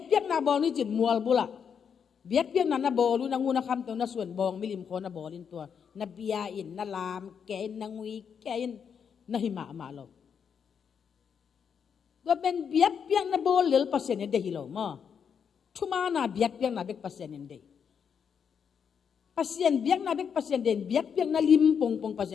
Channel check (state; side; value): quieter; right; 7.1 dB